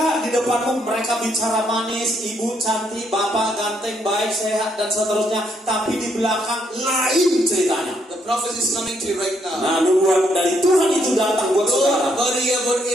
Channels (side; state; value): both; normal; correlation 0.73